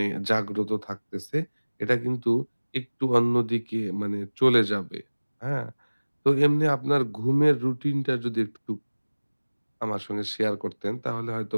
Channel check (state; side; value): inverted; both; correlation -1.00